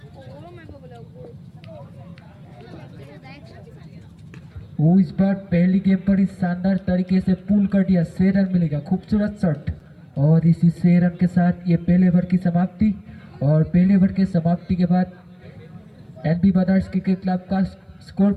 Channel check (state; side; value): identical; both; correlation 1.00